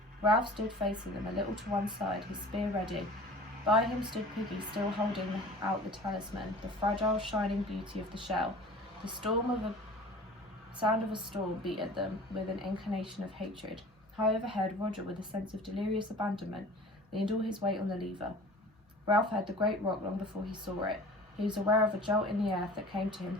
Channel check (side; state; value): both; normal; correlation 0.43